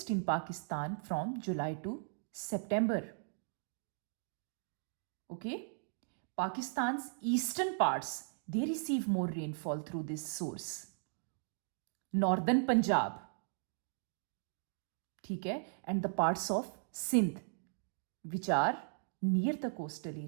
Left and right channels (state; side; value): silent; left; digital silence